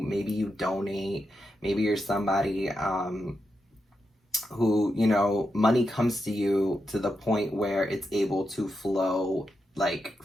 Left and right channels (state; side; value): normal; both; correlation 0.86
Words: you donate. Maybe you're somebody who, you know, money comes to you to the point where it's able to flow like